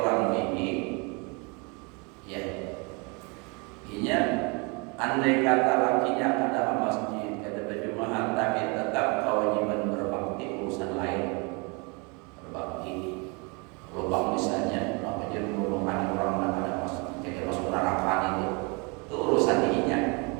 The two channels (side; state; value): left; quieter; 31.1 dB